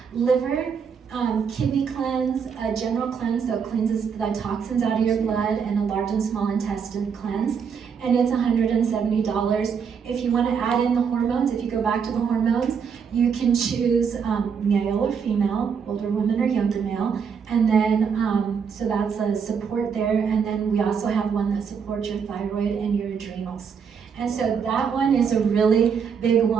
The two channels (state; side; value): quieter; left; 6.6 dB